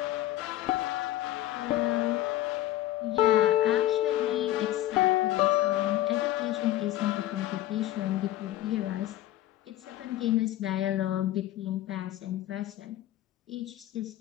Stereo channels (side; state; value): right; quieter; 14.2 dB